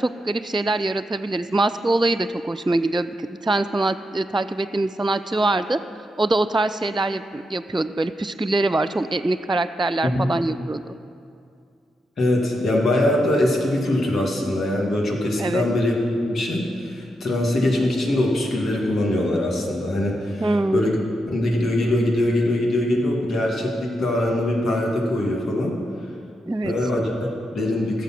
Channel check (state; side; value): normal; both; correlation 0.84